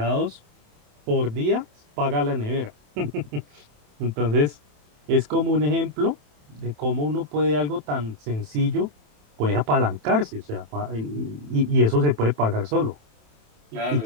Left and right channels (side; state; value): left; late; 27 ms